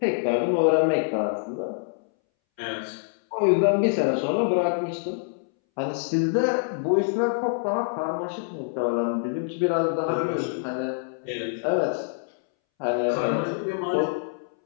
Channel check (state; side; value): silent; right; 61 dB below the other